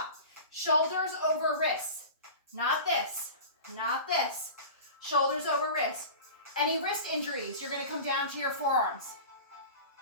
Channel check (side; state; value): both; inverted; correlation -0.35